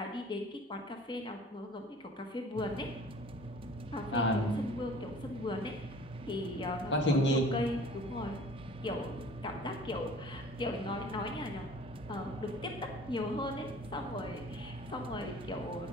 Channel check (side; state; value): both; normal; correlation 0.47